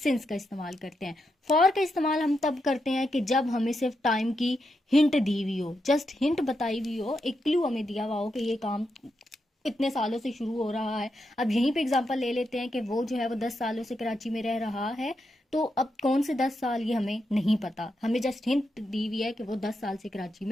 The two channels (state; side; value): normal; both; correlation 0.84